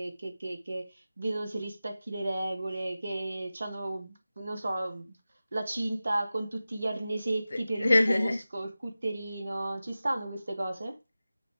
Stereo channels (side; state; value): both; inverted; correlation -0.95